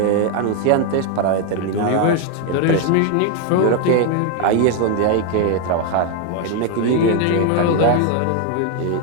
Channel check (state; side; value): different; both; correlation 0.01